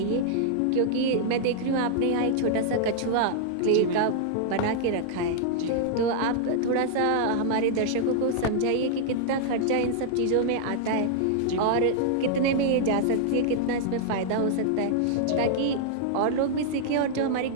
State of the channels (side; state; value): both; different; correlation -0.01